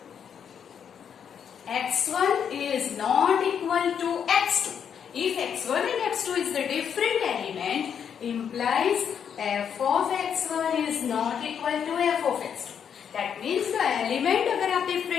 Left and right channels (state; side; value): quieter; right; 7.9 dB